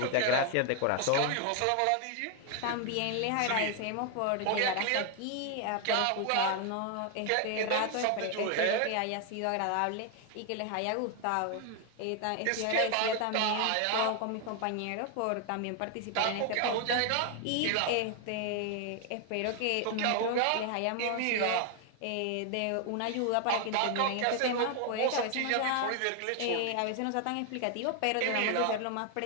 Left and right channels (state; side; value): different; both; correlation 0.00